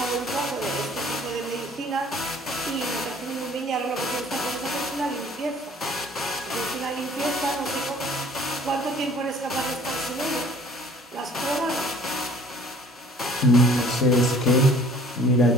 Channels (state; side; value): normal; both; correlation 0.53